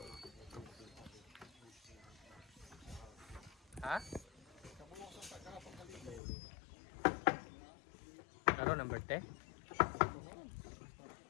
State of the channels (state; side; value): drops out; right; at 6.2 s